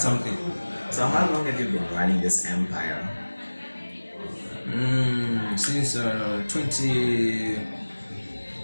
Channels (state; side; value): inverted; both; correlation -1.00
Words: So how long have you been running this empire? Since 20.